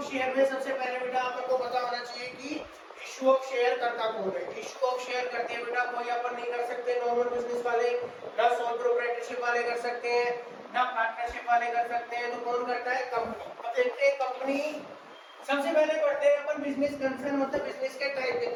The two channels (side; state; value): both; identical; correlation 1.00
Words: शेयर में सबसे पहले बेटा अपन को पता होना चाहिए कि इश्यू ऑफ शेयर करता कौन है। इश्यू ऑफ शेयर करते हैं बेटा कोई अपन नहीं कर सकते, नॉर्मल बिजनेस वाले, ना सोल प्रोप्राइटरशिप वाले कर सकते हैं, ना पार्टनरशिप वाले कर सकते हैं। तो कौन करता है? कंपनी। अब देखते हैं कंपनी। सबसे पहले पढ़ते हैं अपन बिजनेस कंसर्न, मतलब बिजनेस के टाइप